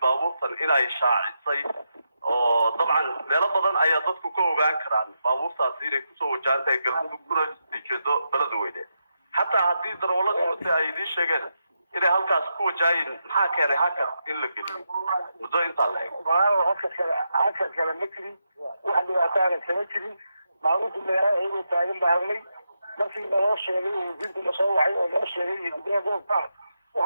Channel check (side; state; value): both; inverted; correlation -0.85